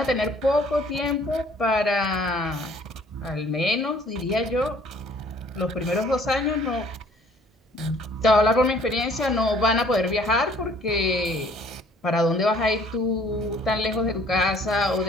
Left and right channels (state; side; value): normal; both; correlation 0.57